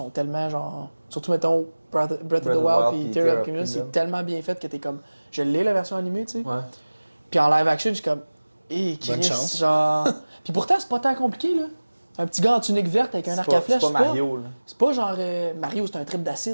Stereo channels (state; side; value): inverted; both; correlation -1.00